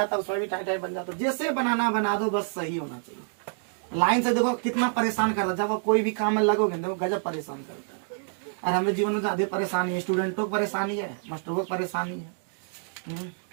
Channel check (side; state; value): left; silent; digital silence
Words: है, उसमें भी टाइम बन जाता है। जैसे बनाना बना दो, बस सही होना चाहिए। लाइन से देखो कितना परेशान कर रहा है। जब आप कोई भी काम में लगोगे देखो गजब परेशान करता है। और हमें जीवन में ज्यादा परेशानी है, स्टूडेंटों को परेशानी है, मास्टरों को परेशानी है।